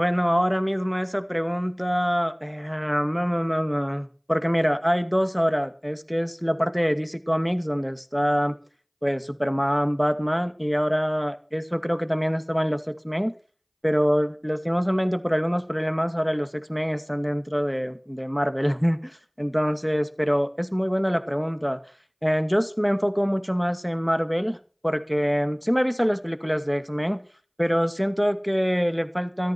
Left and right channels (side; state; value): both; identical; correlation 1.00